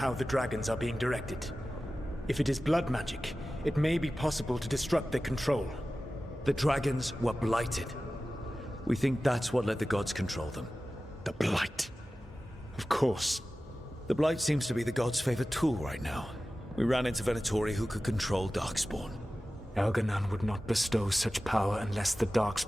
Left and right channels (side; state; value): both; normal; correlation 0.95